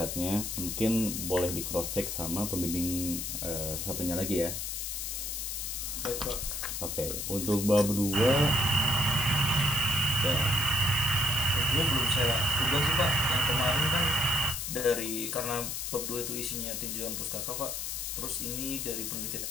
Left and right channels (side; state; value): left; noise; hiss, 3 dB below the sound